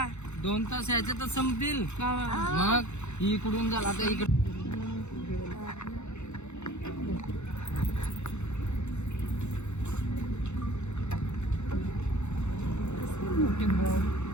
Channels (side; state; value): right; late; 0.82 ms